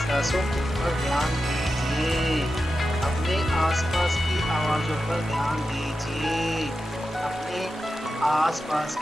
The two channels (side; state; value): both; normal; correlation 0.91